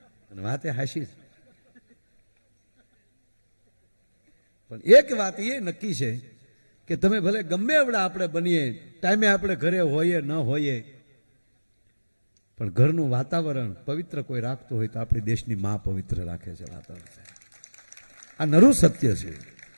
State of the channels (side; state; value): both; inverted; correlation -1.00